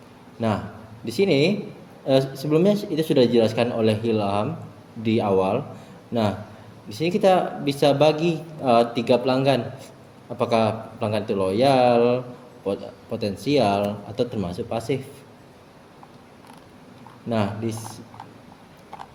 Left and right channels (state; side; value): identical; both; correlation 1.00